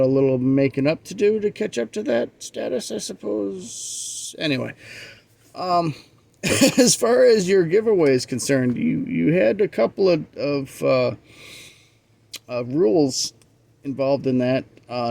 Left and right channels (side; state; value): both; identical; correlation 1.00